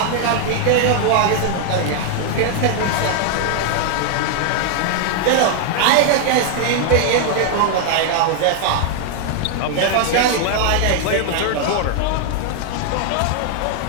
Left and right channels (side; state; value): both; different; correlation 0.00